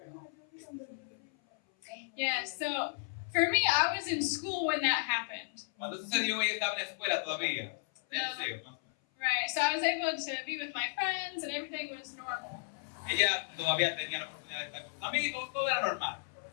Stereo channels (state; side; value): silent; right; 55 dB below the other